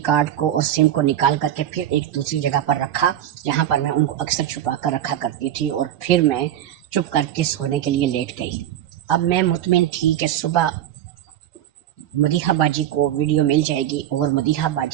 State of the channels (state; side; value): quieter; left; 11.6 dB